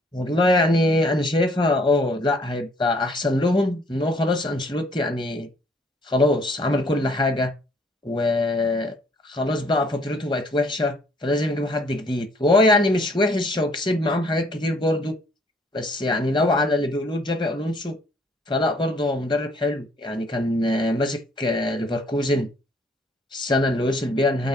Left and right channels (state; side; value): normal; both; correlation 0.62